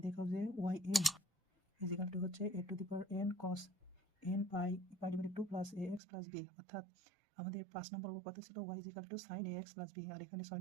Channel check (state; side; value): drops out; left; at 6.0 s